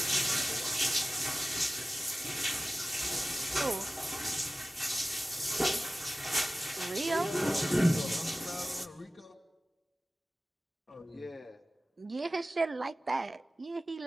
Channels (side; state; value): both; normal; correlation 0.96